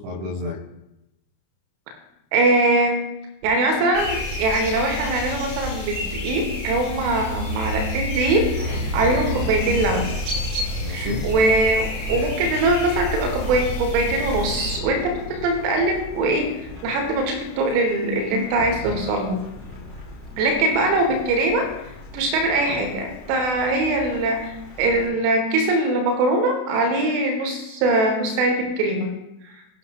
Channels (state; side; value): late; left; 32 ms